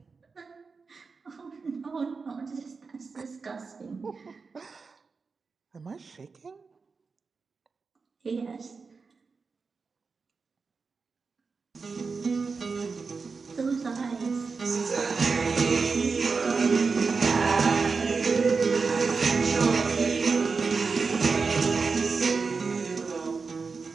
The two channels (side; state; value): left; quieter; 4.7 dB